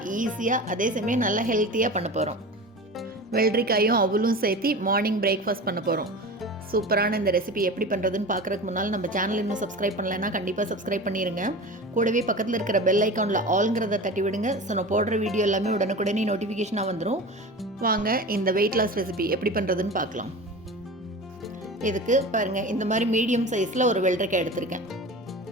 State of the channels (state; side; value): normal; both; correlation 0.32